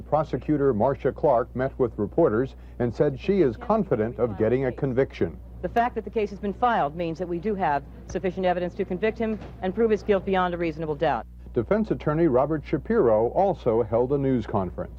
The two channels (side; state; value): both; identical; correlation 1.00